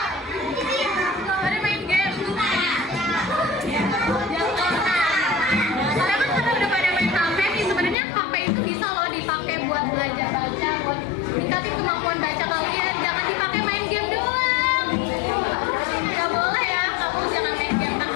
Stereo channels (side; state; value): right; drops out; at 8.0 s